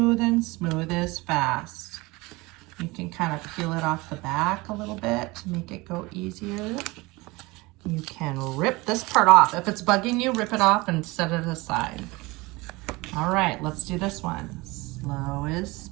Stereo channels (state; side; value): quieter; left; 22.9 dB